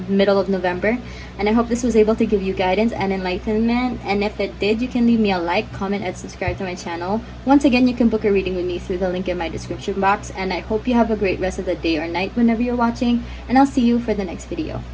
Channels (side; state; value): both; identical; correlation 1.00